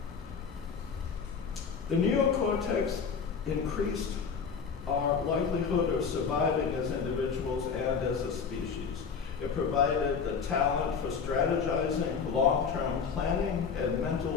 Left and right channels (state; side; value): quieter; right; 6.0 dB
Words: The neocortex increased our likelihood of surviving as individuals and as a species. It provided the talent for strategizing, long-term planning, and